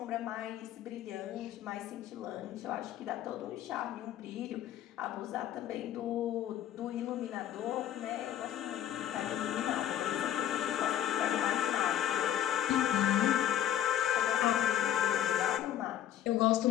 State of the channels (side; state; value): right; quieter; 11.4 dB